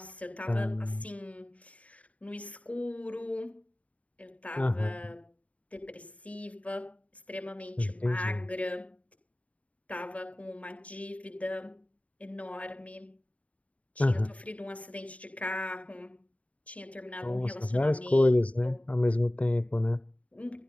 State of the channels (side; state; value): right; late; 0.067 ms